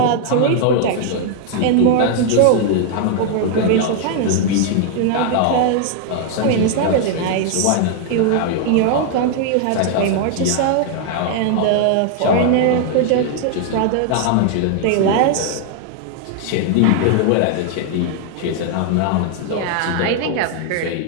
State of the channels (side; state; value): both; different; correlation 0.00